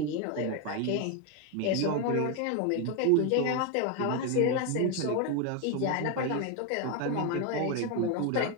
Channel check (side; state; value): both; different; correlation 0.02